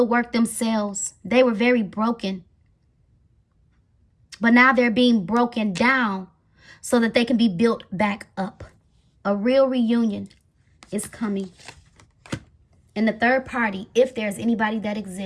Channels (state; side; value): identical; both; correlation 1.00